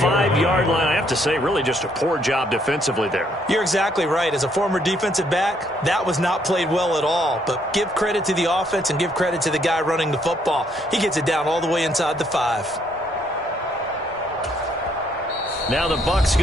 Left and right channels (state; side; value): normal; both; correlation 0.69